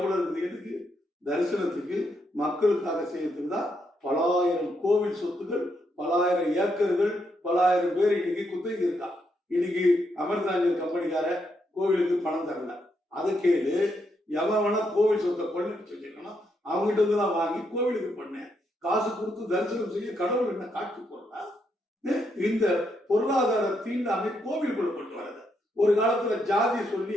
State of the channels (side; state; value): both; normal; correlation 0.78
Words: இருக்குது? எதுக்கு? தரிசனத்துக்கு மக்களுக்காக செய்யறதுக்கு தான். பலாயிரம் கோவில் சொத்துகள், பலாயிரம் ஏக்கர்கள், பலாயிரம் பேர் இன்னைக்கு குத்தகை இருக்கா. இன்னைக்கு அமிர்தாஞ்சல் கம்பெனிக்கார கோவிலுக்கு பணம் தரல. அதை கேளு. எவனா கோவில் சொத்தை கொள்ளடிச்சு வச்சிருக்கணும், அவங்ககிட்ட இருந்து நான் வாங்கி கோவிலுக்கு பண்ணேன். காசு கொடுத்து தரிசனம் செய்ய கடவுள் என்ன காட்சி போடுறா? இந்த பொருளாதார தீண்டாமை கோவிலுக்குள்ள கொண்டு வரது. ஒரு காலத்துல ஜாதி சொல்லி